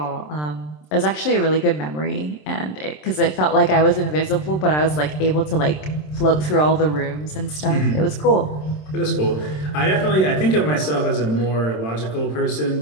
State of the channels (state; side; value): late; right; 27 ms